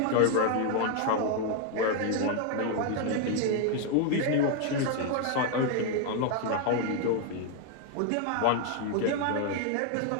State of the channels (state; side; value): different; both; correlation 0.00